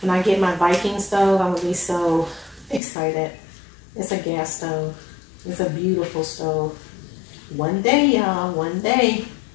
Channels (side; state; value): right; drops out; at 2.8 s